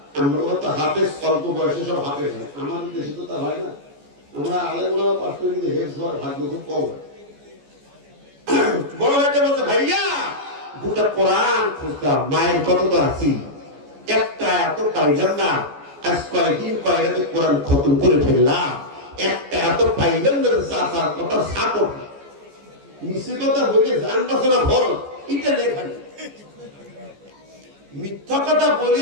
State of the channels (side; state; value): left; late; 14 ms